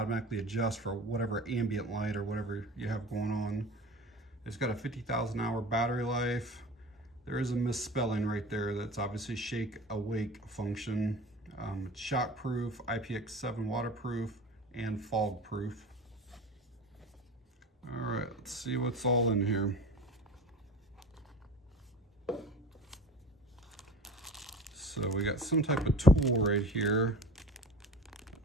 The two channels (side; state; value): both; normal; correlation 0.37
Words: adjust for whatever ambient light or whatever you have going on. It's got a 50,000 hour battery life. There is a misspelling right there. That's obviously shake awake function. It's shock proof, IPX7 waterproof, and fog proof. All right, let's see what's all in here. So we got some type of tool right here.